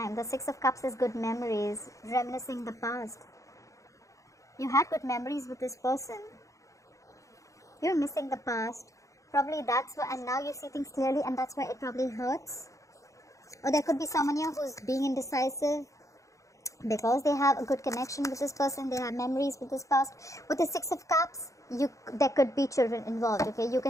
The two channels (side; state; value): right; late; 0.15 ms